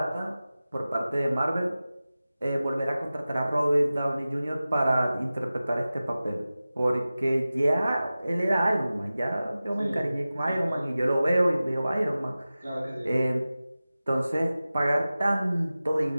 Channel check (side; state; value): both; inverted; correlation -0.96